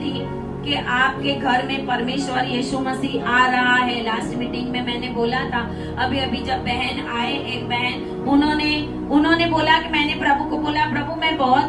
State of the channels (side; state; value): both; identical; correlation 1.00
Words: कि आपके घर में परमेश्वर यीशु मसीह आ रहा है। लास्ट मीटिंग में मैंने बोला था। अभी अभी जब बहन आए, एक बहन, उन्होंने बोला कि मैंने प्रभु को बोला, प्रभु मैं बहुत